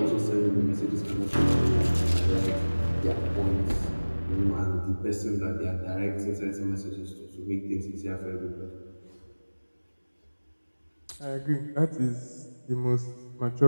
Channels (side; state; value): both; inverted; correlation -1.00